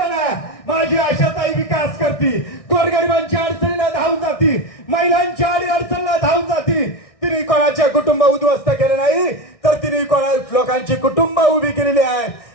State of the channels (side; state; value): right; late; 1.6 ms